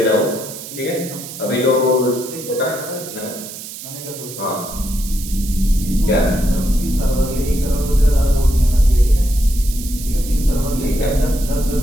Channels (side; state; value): right; noise; hiss, 12 dB below the sound